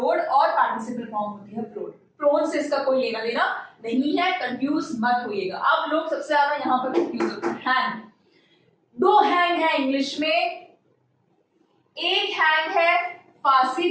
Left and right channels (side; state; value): both; identical; correlation 1.00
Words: और पार्टिसिपल फॉर्म होती है फ्लोड। फ्लोन से इसका कोई लेना देना नहीं है, कंफ्यूज मत होइएगा। अब लोग सबसे ज्यादा यहाँ पर कंफ्यूज होते हैं। हैंग, दो हैंग है इंग्लिश में। एक हैंग है फांसी